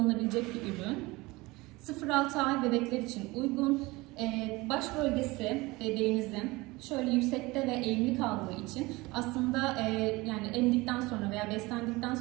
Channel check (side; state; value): left; quieter; 22.1 dB